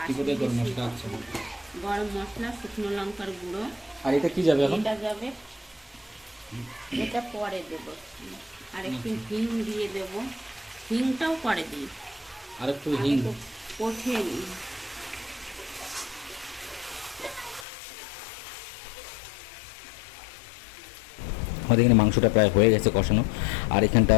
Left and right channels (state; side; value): drops out; right; at 17.7 s